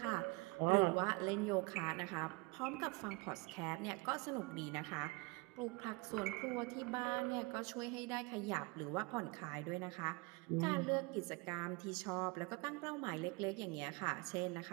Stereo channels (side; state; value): left; quieter; 26.6 dB